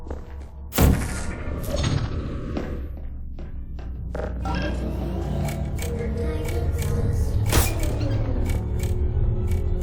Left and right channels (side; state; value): both; identical; correlation 1.00